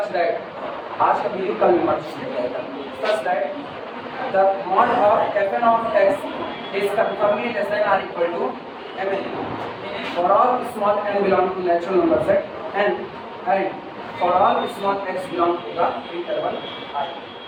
आज का video कल में merge किया जाएगा, such that the mod of fn of x is conformally less than or equal to mn for all small n belong to natural number set and for all small x belong to the interval I।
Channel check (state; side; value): identical; both; correlation 1.00